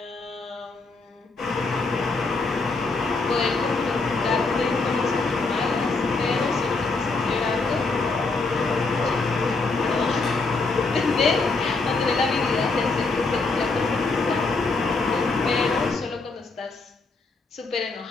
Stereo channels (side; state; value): right; quieter; 3.8 dB